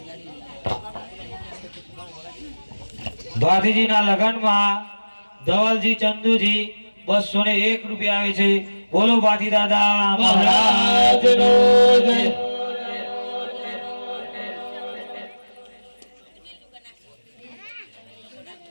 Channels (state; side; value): inverted; both; correlation -1.00